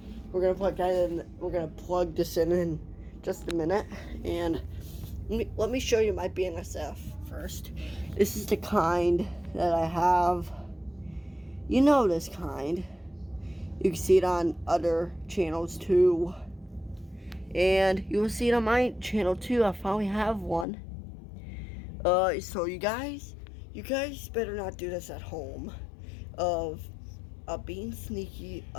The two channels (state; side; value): drops out; right; at 20.7 s